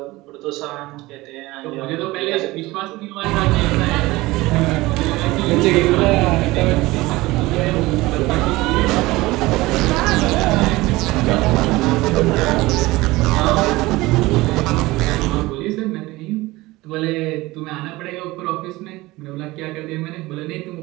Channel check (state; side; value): quieter; left; 19.9 dB